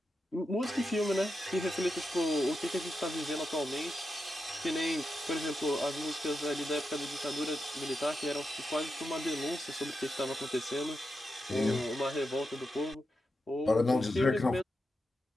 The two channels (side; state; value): both; normal; correlation 0.88